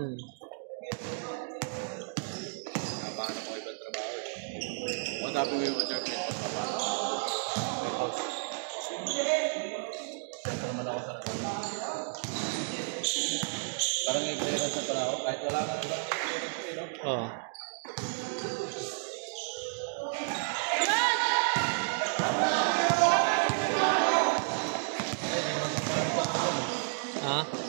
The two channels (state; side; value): silent; left; digital silence